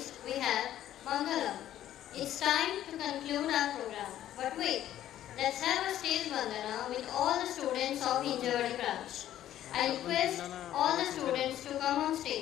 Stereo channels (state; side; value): quieter; right; 12.2 dB